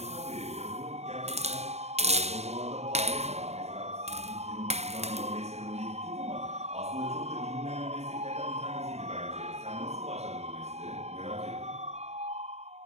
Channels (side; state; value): left; late; 0.31 ms